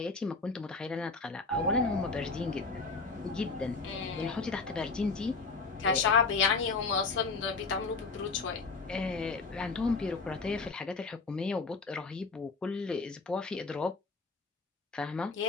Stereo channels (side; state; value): right; quieter; 4.1 dB